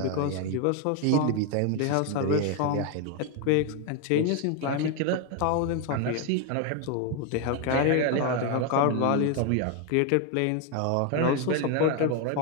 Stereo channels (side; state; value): both; different; correlation 0.01